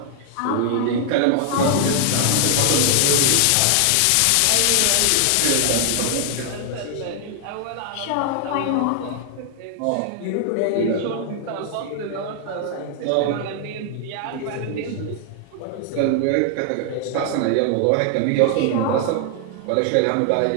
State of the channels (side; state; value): both; different; correlation 0.00